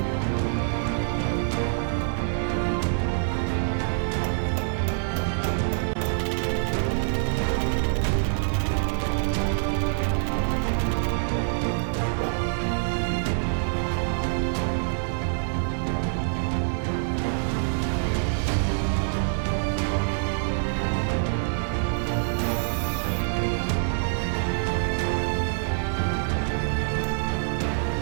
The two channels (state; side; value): silent; left; 61 dB below the other